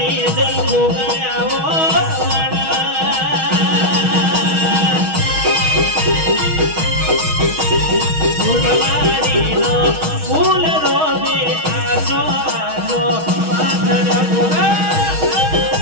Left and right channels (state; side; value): late; left; 6.3 ms